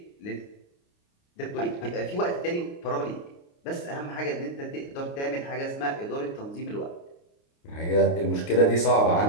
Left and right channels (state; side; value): late; right; 29 ms